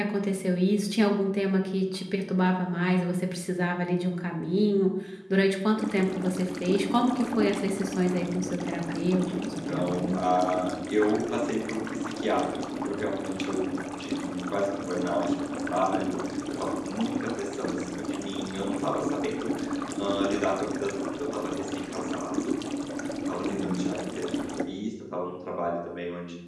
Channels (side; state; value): both; identical; correlation 1.00